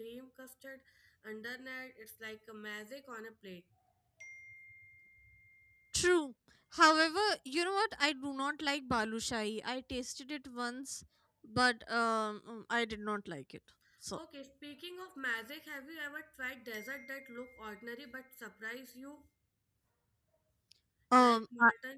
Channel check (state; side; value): identical; both; correlation 1.00